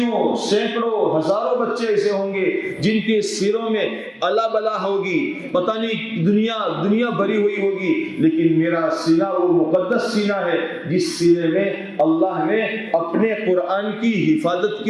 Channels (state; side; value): identical; both; correlation 1.00